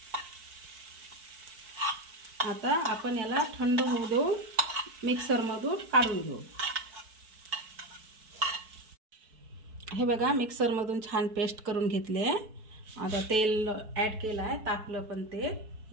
आता आपण याला थंड होऊ देऊ, मिक्सरमधून काढून घेऊ। हे बघा, मिक्सरमधून छान पेस्ट करून घेतले। आता तेल ॲड केलं आहे, तापलं पण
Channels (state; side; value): late; left; 4.6 ms